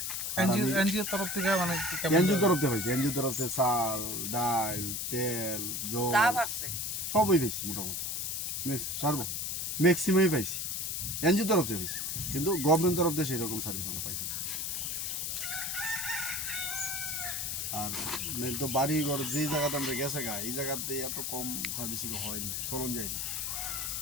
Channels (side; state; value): left; noise; hiss, 2 dB below the sound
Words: এনজিও তরফ থেকে মানে এনজিও তরফ থেকে পাইছি, এনজিও তরফ থেকে চাল, ডাল, তেল, জল সবই পাইছি মোটামুটি, ম্যাক্সিমামই পাইছি এনজিও তরফ থেকে পাইছি, কিন্তু গভর্নমেন্ট তরফ থেকে সেরকম সার্ভিস আমরা পাইছি। আর তো বাড়ি ঘর যে জায়গাতে আমরা গেছে গা, এই জায়গাতে এত কম সার্ভিস হয়নি, চলন যায়নি।